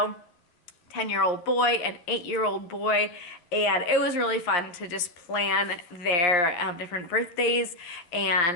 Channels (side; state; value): right; late; 11 ms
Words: 10-year-old boy, an 8-year-old boy, and it was really fun to just plan their different birthdays.